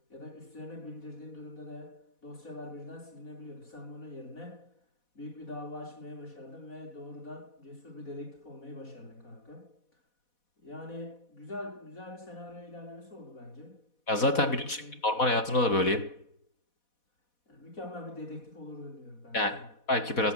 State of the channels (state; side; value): late; right; 4.1 ms